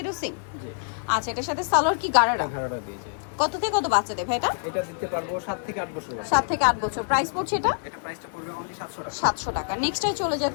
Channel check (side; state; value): right; silent; 56 dB below the other